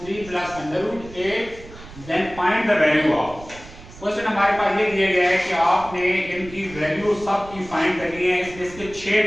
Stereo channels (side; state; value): right; noise; rumble, 17 dB below the sound